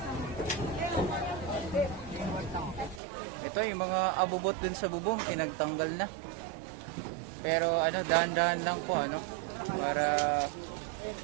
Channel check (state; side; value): drops out; left; at 3.0 s